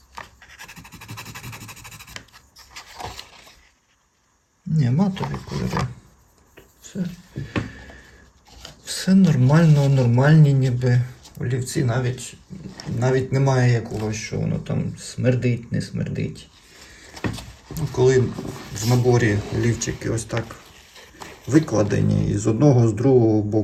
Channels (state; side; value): identical; both; correlation 1.00